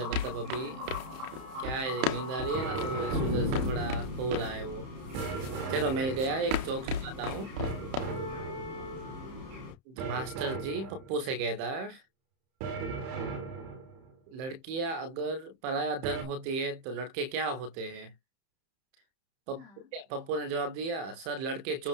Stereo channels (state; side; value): late; left; 31 ms